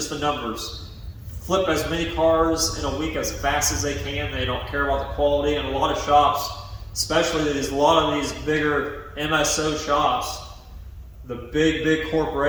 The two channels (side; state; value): both; identical; correlation 1.00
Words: the numbers. Flip as many cars in a week as fast as they can. They don't care about the quality. And a lot of shops, especially a lot of these bigger MSO shops, the big